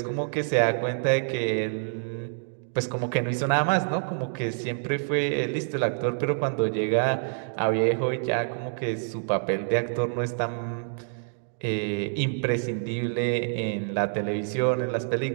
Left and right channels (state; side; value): silent; left; digital silence